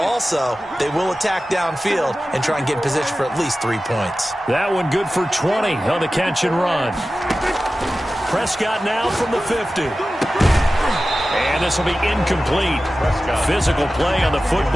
they will attack downfield and try and get in position for at least 3 points. That one good for 20 on the catch and run. Prescott now from the 50. And this will be incomplete. Physical play on the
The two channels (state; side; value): normal; both; correlation 0.95